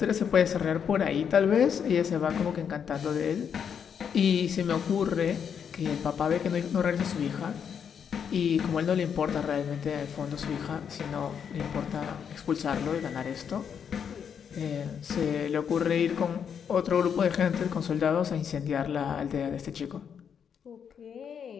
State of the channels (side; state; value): right; quieter; 7.5 dB